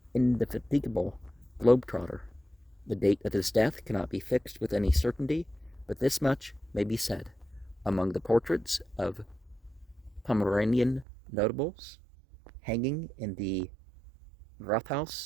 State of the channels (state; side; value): drops out; left; at 11.1 s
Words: indefatigable globetrotter. The date of his death cannot be fixed with any certainty, but this much may be said. Among the portraits of Pomeranian notables hanging in the